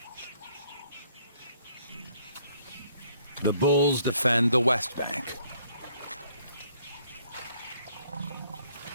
The bulls defend the west bank.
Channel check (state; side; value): inverted; both; correlation -0.65